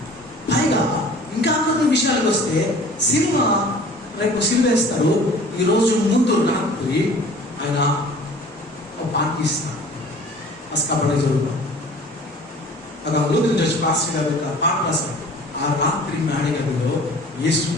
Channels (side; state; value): both; normal; correlation 0.47